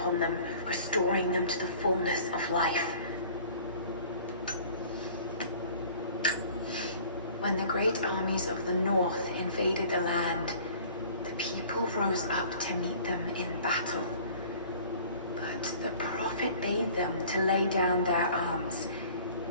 them, restoring them to the fullness of life. When the great armies of the north invaded the land, the people rose up to meet them in battle. But the prophet bade them to lay down their arms.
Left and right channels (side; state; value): both; inverted; correlation -0.48